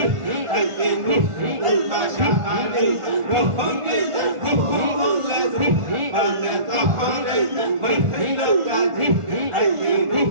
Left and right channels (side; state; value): left; late; 1.4 ms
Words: আইনুল বাশারি রহমে রুহুল রুহমানে তহরে মহিলা কাজী আইনুল